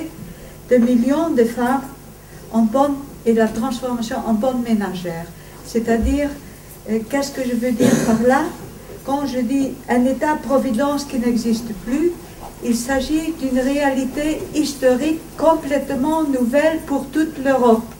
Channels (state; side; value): identical; both; correlation 1.00